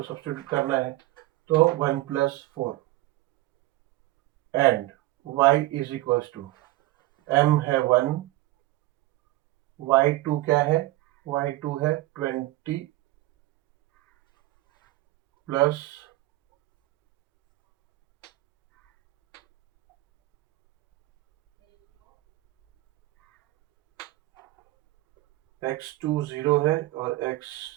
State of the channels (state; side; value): quieter; left; 18.2 dB